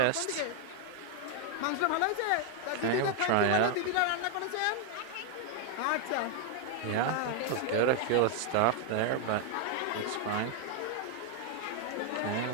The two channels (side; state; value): both; different; correlation 0.00